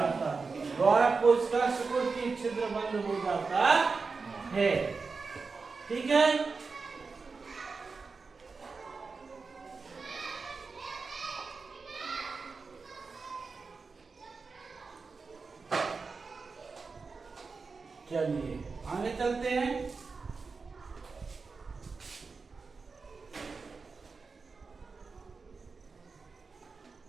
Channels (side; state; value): left; quieter; 4.5 dB